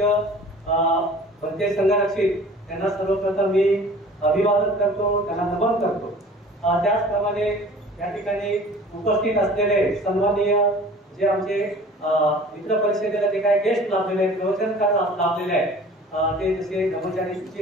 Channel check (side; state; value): both; normal; correlation 0.46